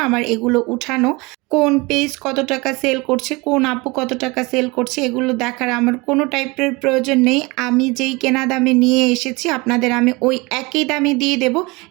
আমার এগুলো উঠানো। কোন পেজ কত টাকা সেল করছে, কোন আপু কত টাকা সেল করছে এগুলো দেখার আমার কোনো টাইপের প্রয়োজন নেই। আমি যেই কেনা দামে নিয়ে এসেছি আপনাদের আমি ওই একই দামে দিয়ে দেব।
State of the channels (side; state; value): left; quieter; 25.0 dB